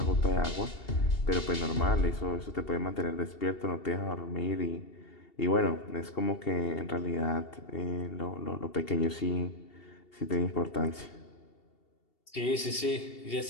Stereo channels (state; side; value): late; right; 2.7 ms